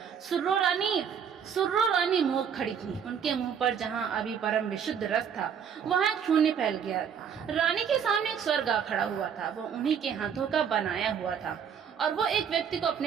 सुर्रो रानी! सुर्रो रानी मुंह खड़ी थी। उनके मुंह पर जहां अभी परम विशुद्ध रस था, वहां एक शून्य फैल गया। रानी के सामने एक स्वर्ग आ खड़ा हुआ था। वो उन्हीं के हाथों का बनाया हुआ था और वो एक व्यक्ति को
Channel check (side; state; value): left; quieter; 7.6 dB